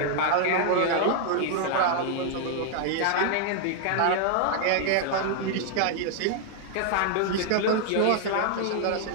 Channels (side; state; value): both; different; correlation 0.00